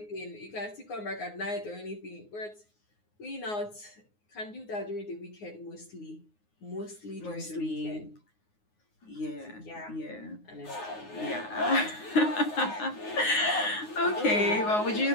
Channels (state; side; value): late; right; 9.5 ms